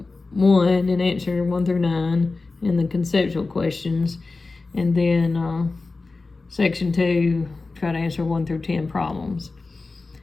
1 and answer 1 through 9 and the conceptual questions, and then section 2 try to answer 1 through 10 problems.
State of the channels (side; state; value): right; quieter; 3.7 dB